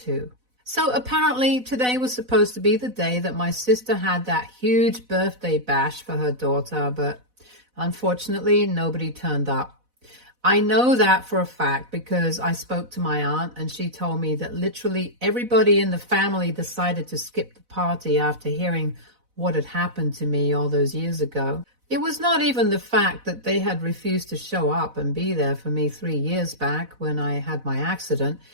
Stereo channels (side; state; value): left; late; 4.0 ms